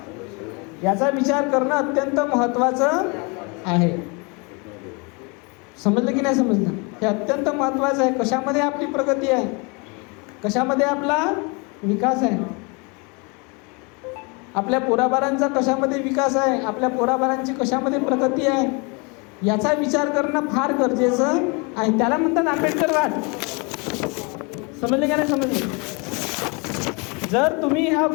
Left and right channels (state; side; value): quieter; right; 30.8 dB